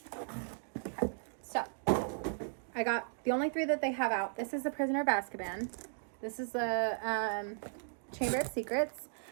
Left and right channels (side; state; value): left; silent; digital silence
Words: So, I got the only 3 that they have out. This is The Prisoner of Azkaban. This is the Chamber of Secrets.